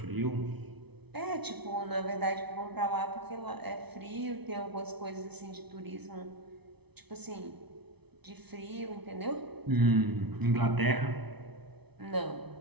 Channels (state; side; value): late; left; 0.99 ms